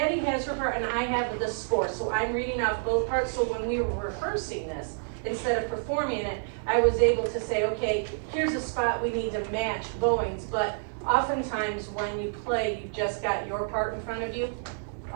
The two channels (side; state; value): left; silent; digital silence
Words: has her part and I have the score, so I'm reading off both parts, so when we were rehearsing this, instead of performing it, I was able to say, okay, here's a spot we need to match bowings, but oftentimes when you play, you've just got your part in front of you.